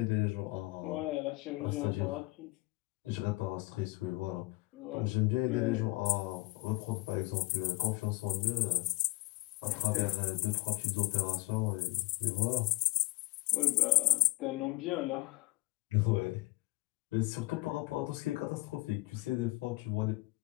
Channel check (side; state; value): right; quieter; 23.1 dB